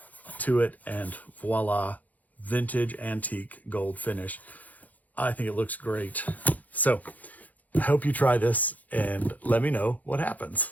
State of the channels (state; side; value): late; right; 0.078 ms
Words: to it, and voila, vintage antique gold finish. I think it looks great. So I hope you try this and let me know what happens.